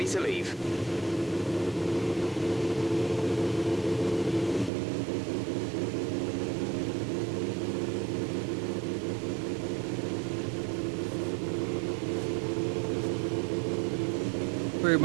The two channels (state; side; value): drops out; left; at 4.7 s